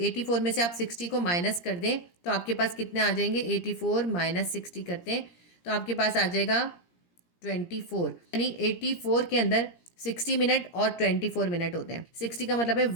में से आप 60 को माइनस कर दें तो आपके पास कितने आ जाएंगे, 84 माइनस 60 करते हैं तो आपके पास आ जाएगा 24। यानी 84 के अंदर 60 मिनट और 24 मिनट होते हैं। 60 का मतलब है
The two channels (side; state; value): right; late; 17 ms